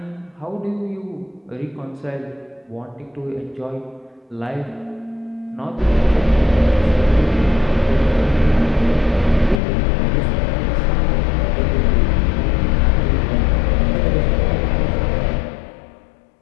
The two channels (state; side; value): drops out; right; at 9.6 s